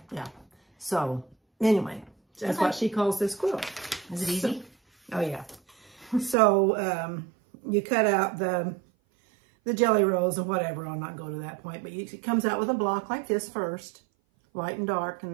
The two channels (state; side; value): drops out; left; at 6.4 s